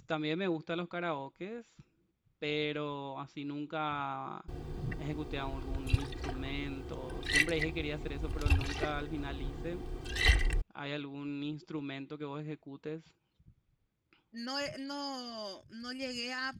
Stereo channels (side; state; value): both; identical; correlation 1.00